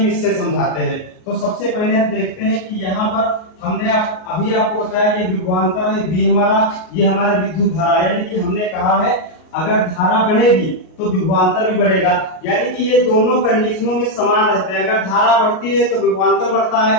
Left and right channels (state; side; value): late; right; 38 ms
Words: इससे समझाते हैं। तो सबसे पहले हम देखते हैं कि यहाँ पर हमने अभी आपको बताया ये विभवांतर है बी हमारा, ये हमारा विद्युत धारा, यानी कि हमने कहा है अगर धारा बढ़ेगी तो विभवांतर भी बढ़ेगा। यानी कि ये दोनों कंडीशनों में समान रहते हैं। अगर धारा बढ़ती है तो विभवांतर बढ़ता है,